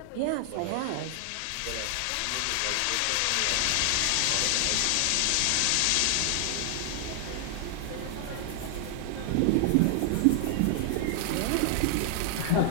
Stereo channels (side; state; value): both; different; correlation 0.00